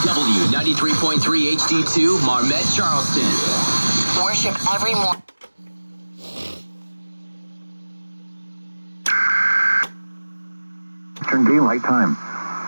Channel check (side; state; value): both; inverted; correlation -1.00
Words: 93.3 HD2 Marmet, Charleston. Worship every morning. Eastern Daylight Time.